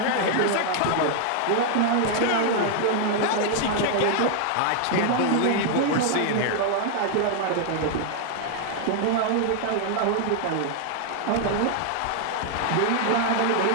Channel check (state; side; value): different; both; correlation 0.00